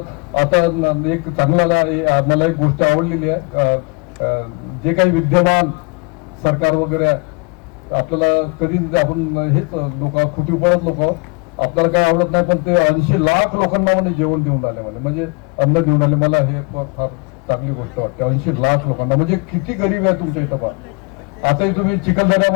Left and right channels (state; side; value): quieter; right; 30.6 dB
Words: आता एक चांगला मला एक गोष्ट आवडलेली आहे. जे काही विद्यमान सरकार वगैरे आहे, आपल्याला कधी आपण हेच लोक खुटीपणच लोक आपल्याला काय आवडत नाही, पण ते 80 लाख लोकांना म्हणजे जेवण देऊन आले, म्हणजे अन्न देऊन आले. मला हे फार चांगली गोष्ट वाटते. 80 लाख लोकांना म्हणजे किती गरीब आहे तुमच्या इथं पहा. आताही तुम्ही